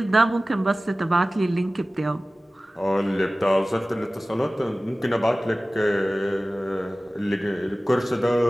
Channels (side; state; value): both; normal; correlation 0.97